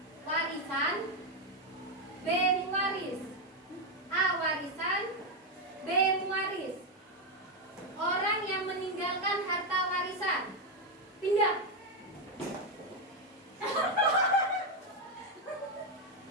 warisan, B waris. A warisan, B waris. Orang yang meninggalkan harta warisan pindah.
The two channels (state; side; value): normal; both; correlation 0.05